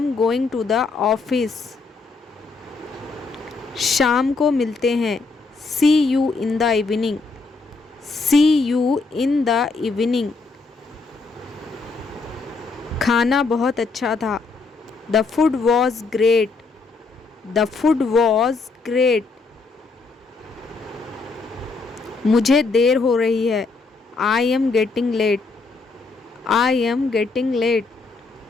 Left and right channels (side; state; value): right; quieter; 4.0 dB